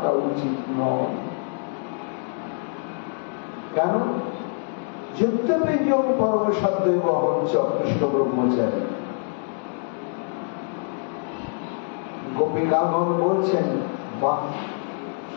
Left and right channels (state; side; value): silent; right; 57 dB below the other